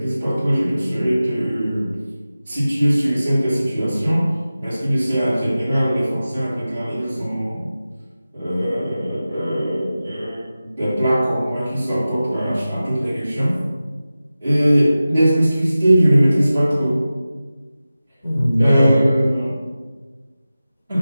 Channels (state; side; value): inverted; both; correlation -0.95